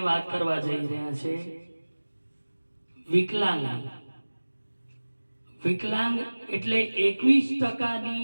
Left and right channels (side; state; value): both; inverted; correlation -1.00